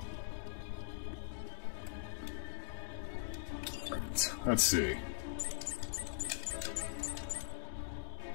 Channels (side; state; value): right; silent; digital silence